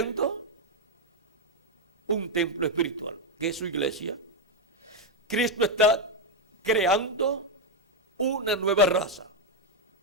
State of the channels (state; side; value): normal; both; correlation 0.03